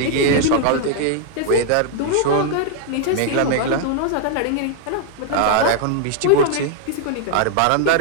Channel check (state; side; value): different; both; correlation 0.00